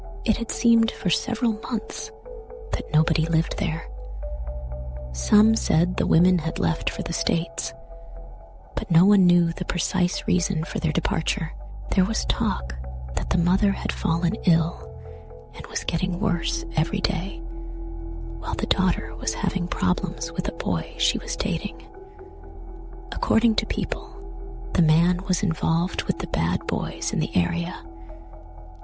It had seemed for several months that nobody lived there. Some said the women had left for the States, but no one knew the precise reason for their departure. There was talk that the mother had fallen ill and was getting worse every day, while the daughter was having problems with a boy she was dating. According to people, the man was involved with the bad boys in the area,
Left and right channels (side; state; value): both; identical; correlation 1.00